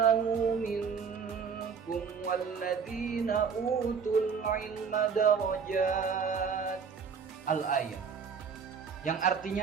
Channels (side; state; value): left; quieter; 6.1 dB